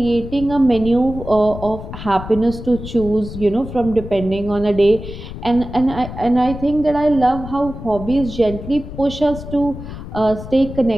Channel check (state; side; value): noise; left; rumble, 11 dB below the sound